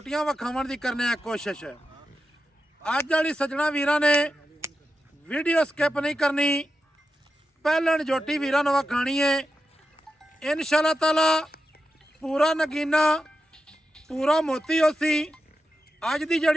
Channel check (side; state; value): both; normal; correlation 0.90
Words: विखाउण दी करने आ कोशिश। अज वाली सज्जणा वीरां ने वीडियो स्किप नहीं करनी, पहलन जोटी वीरां नूं विखाणी है। इंशाअल्लाह ताला पूरा नगीना पूरा मोती होसी। अज की